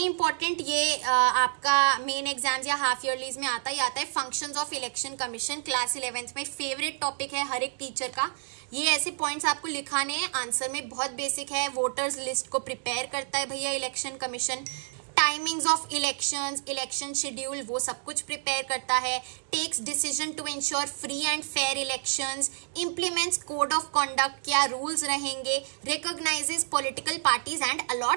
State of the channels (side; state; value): left; silent; 58 dB below the other